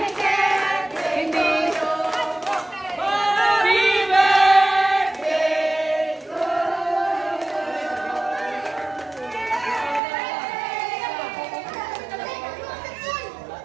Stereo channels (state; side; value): drops out; left; at 10.0 s